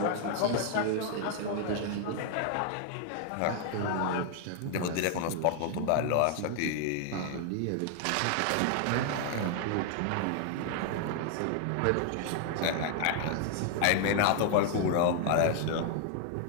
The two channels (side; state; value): both; different; correlation 0.00